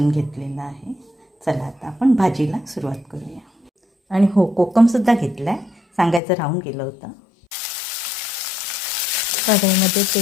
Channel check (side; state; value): right; drops out; at 6.2 s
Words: घेतलेला आहे। चला आता आपण भाजीला सुरुवात करूया। आणि हो, कोकम सुद्धा घेतलाय, सांगायचं राहून गेलं होतं। कढईमध्ये